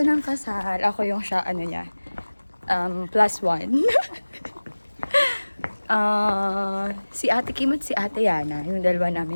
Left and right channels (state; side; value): inverted; both; correlation -1.00